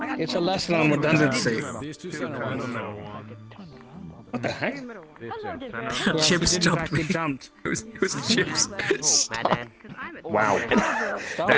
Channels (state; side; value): identical; both; correlation 1.00